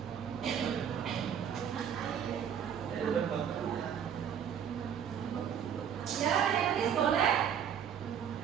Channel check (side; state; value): left; quieter; 8.4 dB